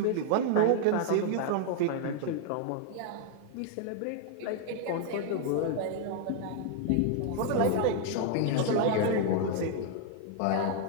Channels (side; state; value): both; different; correlation 0.00